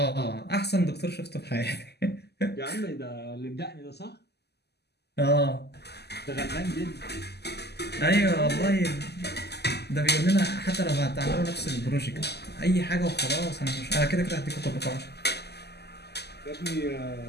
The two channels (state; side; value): late; right; 0.48 ms